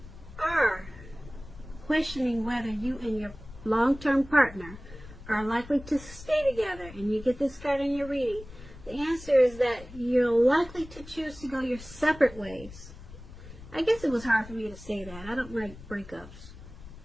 are questioning whether you and your long-term partner are likely to stay together, and you get this card in your reading, the answer is that you're likely to choose to go your separate ways. I guess it was hard for me to say that. I don't like breakups,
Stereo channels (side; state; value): left; noise; rumble, 17 dB below the sound